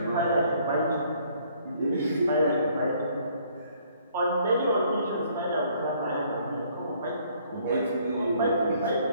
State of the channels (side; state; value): both; inverted; correlation -0.63